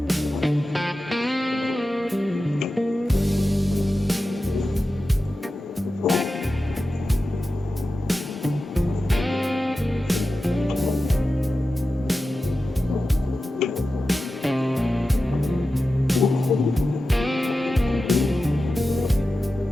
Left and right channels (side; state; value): both; normal; correlation 0.93